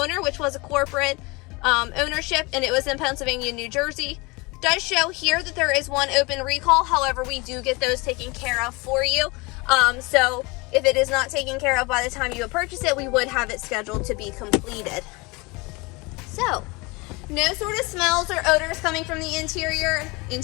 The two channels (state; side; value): quieter; right; 25.9 dB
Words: which was a corporate ownership, and it was in Pennsylvania, New Jersey. Does show here that there is 1 open recall. However, we do get those taken care of for you. So if it is not taken care of by the time you purchase it, we would have it scheduled to be completed. So, no sort of smells or odors coming from the interior.